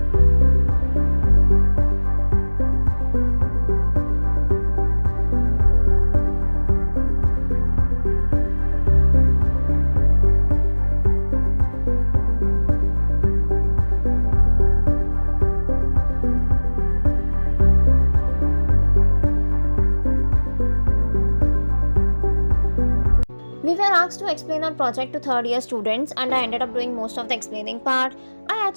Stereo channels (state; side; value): inverted; both; correlation -1.00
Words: We were asked to explain our project to third year students and I ended up doing most of the explaining part. I